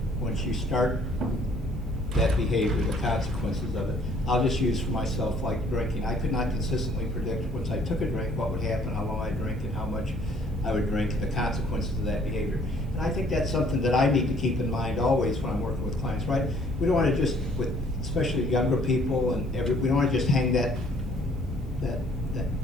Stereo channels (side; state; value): both; normal; correlation 0.59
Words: once you start that behavior, the consequences of it. I'll just use for myself like drinking. I could not consistently predict once I took a drink what would happen, how long I'd drink, and how much I would drink, the consequences of that behavior. And I think that's something that I need to keep in mind always when I'm working with clients, right? We don't want to just, with especially younger people, and we don't want to just hang that